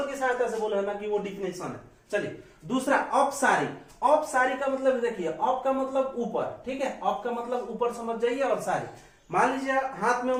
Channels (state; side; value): identical; both; correlation 1.00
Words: की सहायता से बोला है ना कि वो डिफिनेशन है। चलिए दूसरा, औपसारी। औपसारी का मतलब देखिए, औप का मतलब ऊपर, ठीक है, औप का मतलब ऊपर समझ जाइए, और सारी, मान लीजिए हाथ में